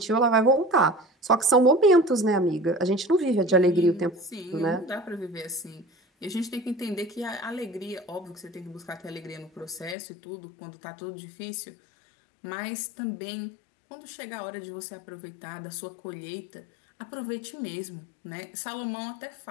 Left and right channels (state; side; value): drops out; right; at 10.0 s